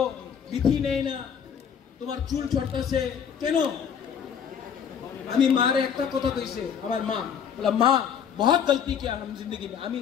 বিধি নেই না, তোমার চুল ছড়তাছে কেন? আমি মারে একটা কথা কইছে, আমার মা বলা, মা बहुत गलती किया हम जिंदगी में, আমি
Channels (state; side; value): quieter; right; 7.8 dB